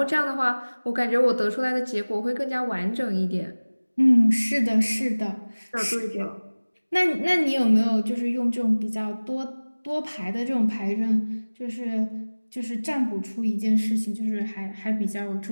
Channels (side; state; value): both; inverted; correlation -1.00